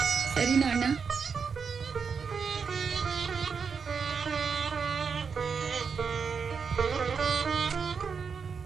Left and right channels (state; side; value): quieter; left; 5.9 dB